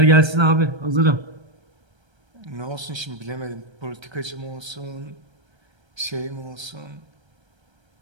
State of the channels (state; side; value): late; left; 1.3 ms